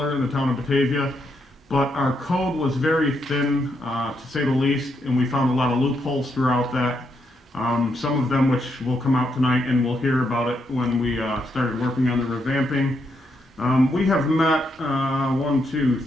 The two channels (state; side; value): normal; both; correlation 0.79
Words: in the town of Batavia, but our code was very thin, to say the least, and we found a lot of loopholes throughout that. Some of them which will come out tonight, and we'll hear about it when we started working on the revamping. We have met 1, 2,